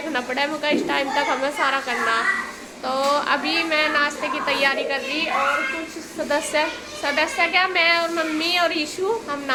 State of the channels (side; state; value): both; identical; correlation 1.00